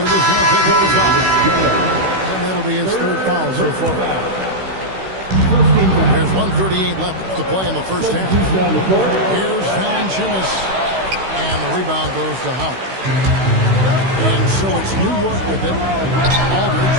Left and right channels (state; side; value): late; left; 16 ms